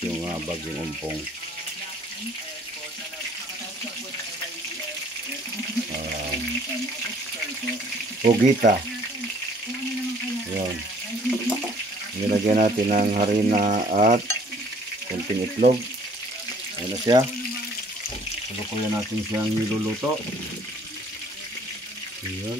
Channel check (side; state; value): both; normal; correlation 0.58